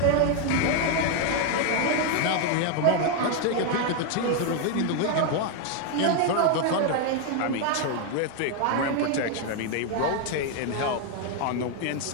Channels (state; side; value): different; both; correlation 0.00